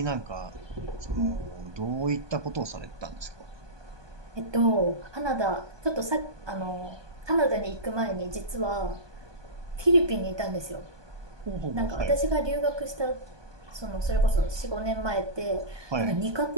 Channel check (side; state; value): left; late; 1.2 ms